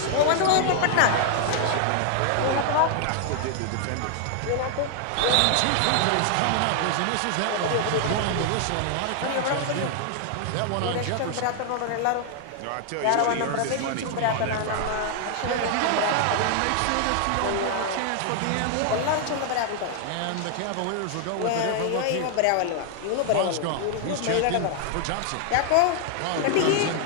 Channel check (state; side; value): different; both; correlation 0.00